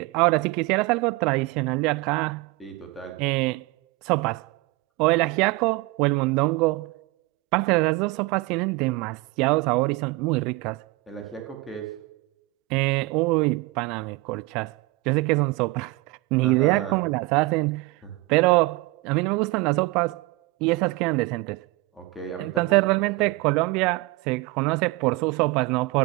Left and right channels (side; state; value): left; quieter; 22.2 dB